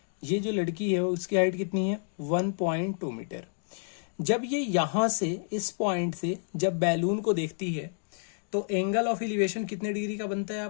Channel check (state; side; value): silent; right; digital silence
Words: ये जो लड़की है उसकी हाइट कितनी है? 1.2 मीटर। जब ये यहां से, इस पॉइंट से जब बैलून को देखती है तो एंगल ऑफ एलिवेशन कितने डिग्री का बनता है